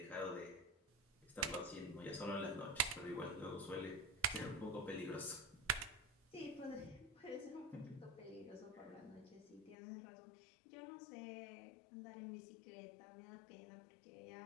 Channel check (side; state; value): right; drops out; at 9.8 s